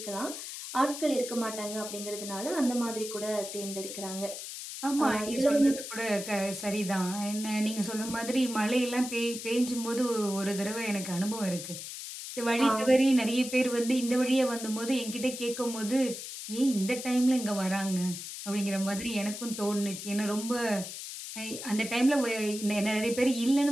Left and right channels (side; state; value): left; noise; hiss, 9 dB below the sound